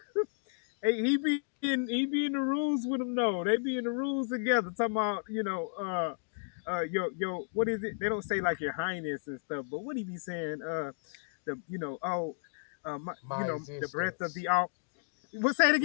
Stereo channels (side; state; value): right; silent; digital silence